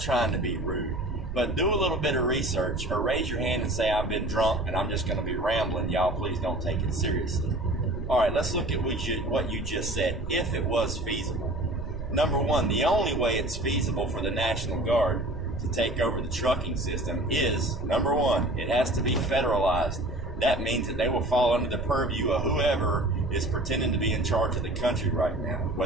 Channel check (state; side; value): noise; right; rumble, 9 dB below the sound